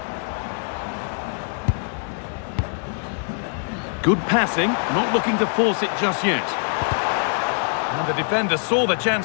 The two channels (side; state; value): right; silent; digital silence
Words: Good passing, not looking to force it just yet. And the defender saw the